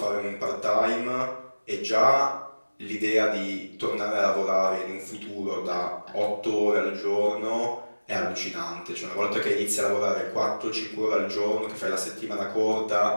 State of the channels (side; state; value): both; inverted; correlation -1.00